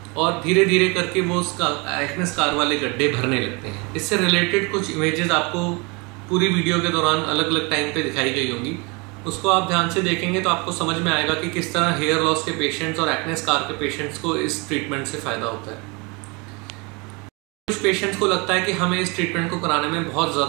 और धीरे धीरे करके वो उसका एक्ने स्कार वाले गड्ढे भरने लगते हैं। इससे रिलेटेड कुछ इमेजेस आपको पूरी वीडियो के दौरान अलग अलग टाइम पे दिखाई गई होंगी, उसको आप ध्यान से देखेंगे तो आपको समझ में आएगा कि किस तरह हेयर लॉस के पेशेंट्स और एक्ने स्कार के पेशेंट्स को इस ट्रीटमेंट से फ़ायदा होता है। कुछ पेशेंट्स को लगता है कि हमें इस ट्रीटमेंट को कराने में बहुत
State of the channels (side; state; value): left; quieter; 28.9 dB